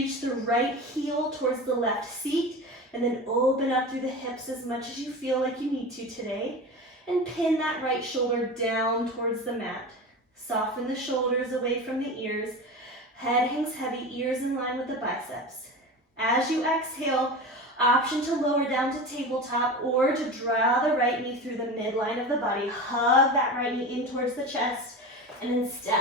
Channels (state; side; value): normal; both; correlation 0.29